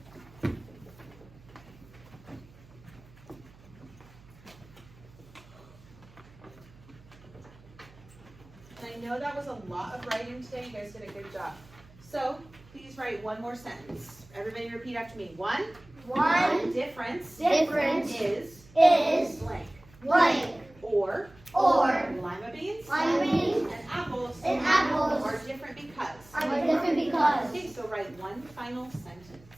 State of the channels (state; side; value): noise; right; hum, 24 dB below the sound